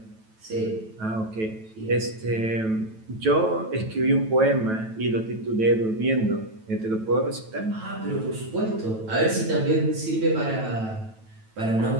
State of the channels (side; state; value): left; late; 9.1 ms